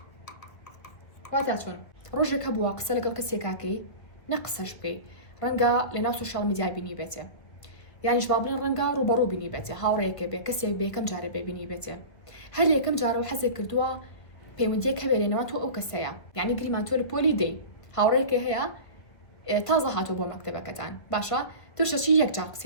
واتە چۆن ڕۆژێک هەبووە قسە لەگەڵ کەسێکاکەی نە قسەش بکەی ڕەنگە لە ناو سوشال میدیا بینی بێتێ، یانیش با بڵێن ڕەنگە ڕوبەڕوو بینی بێتێ، هاوڕێیەکە بێ کەسێک بێ یەکەم جارە بێبینی بێتێ، هەر لە یەکەم جارەوە حەزێک کردووە پەیوەندیەک هەبێ لێنەوە تۆ ئەو کەسەیە، یعنی گریمان تۆ لە پۆلی دەی هاوڕێیەکە هەیە تازە هاتوو بۆ مەکتەبەکەتان باشە توشەچی یەک جار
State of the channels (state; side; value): late; right; 1.6 ms